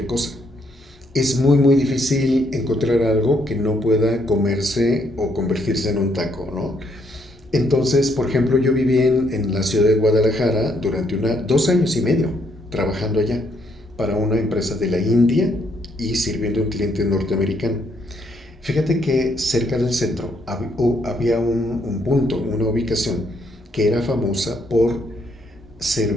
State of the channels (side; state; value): both; normal; correlation 0.72